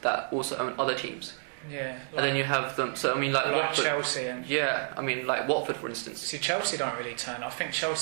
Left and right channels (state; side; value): silent; left; 58 dB below the other